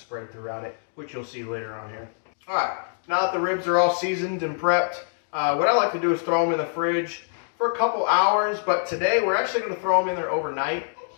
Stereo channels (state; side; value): silent; right; digital silence